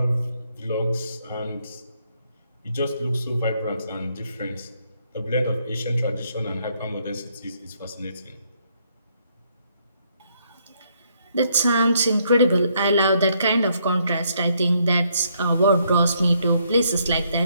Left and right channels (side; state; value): both; inverted; correlation -0.71